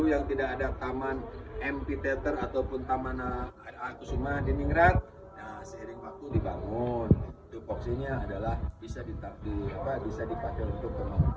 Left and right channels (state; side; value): identical; both; correlation 1.00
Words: yang tidak ada taman amphitheater ataupun taman Kusuma Diningrat, nah seiring waktu dibangun. Tupoksinya adalah bisa dipakai untuk